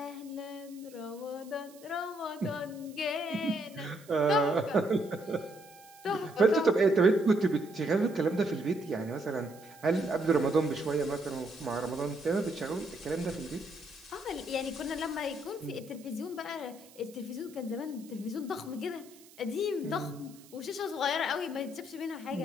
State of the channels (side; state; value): right; noise; hiss, 23 dB below the sound